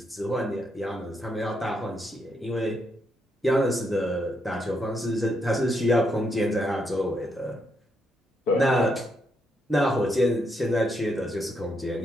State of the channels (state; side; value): normal; both; correlation 0.78